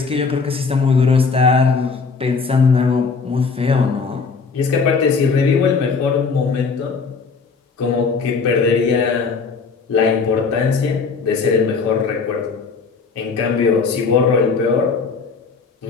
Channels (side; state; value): right; quieter; 4.9 dB